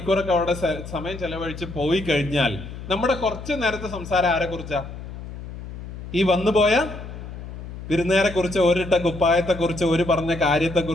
അവിടെ സമയം ചെലവഴിച്ച് പോയി കഴിഞ്ഞാൽ നമ്മുടെ കുറച്ച് നേരത്തെ സംസാരം ആരെ കുറിച്ചാ? ഈ വന്നുപോയ വിരുന്നേരെ കുറിച്ച്, ഒരിട്ട കുപ്പായത്തെ കുറിച്ച്, ഒരു പറഞ്ഞ കാര്യത്തെ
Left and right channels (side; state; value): left; noise; hum, 11 dB below the sound